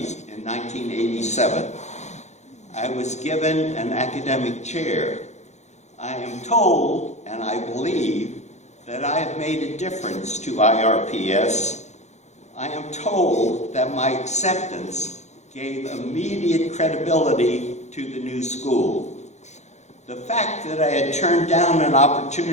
in 1987. I was given an academic chair. I am told, and I believe, that I have made a difference to IRPS. I am told that my acceptance gave immediate credibility to the new school. The fact that I had turned down an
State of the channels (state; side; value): late; right; 0.33 ms